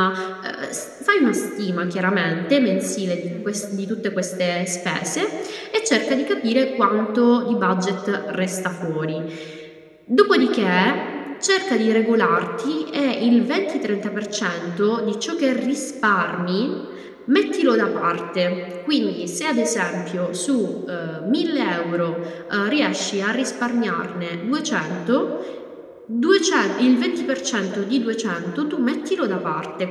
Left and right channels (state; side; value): identical; both; correlation 1.00